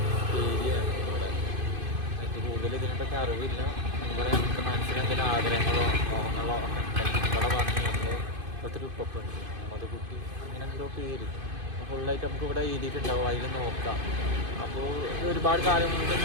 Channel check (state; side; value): late; left; 2.5 ms